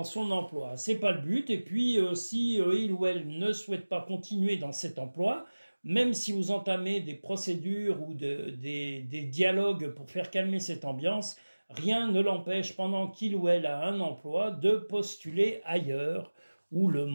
son emploi. C'est pas le but. Et puis si il ou elle ne souhaite pas continuer dans cet emploi, même si vous entamez des procédures ou des dialogues pour faire calmer cette ambiance, rien ne l'empêche, pendant qu'il ou elle a un emploi, de postuler ailleurs, où le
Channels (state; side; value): inverted; both; correlation -1.00